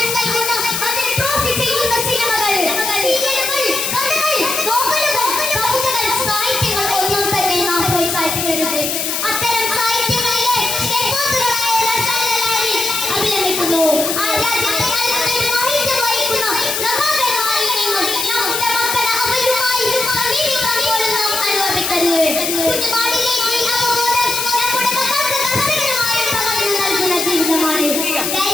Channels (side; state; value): left; noise; hiss, 1 dB below the sound